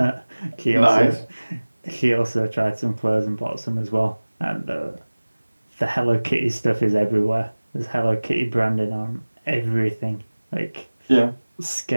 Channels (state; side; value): inverted; both; correlation -1.00